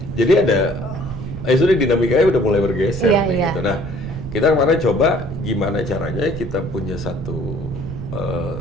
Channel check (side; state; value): right; noise; rumble, 8 dB below the sound